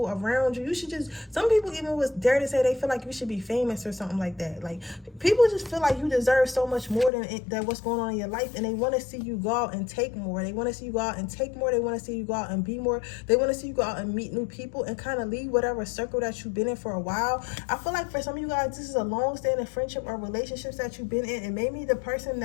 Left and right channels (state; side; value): drops out; right; at 7.1 s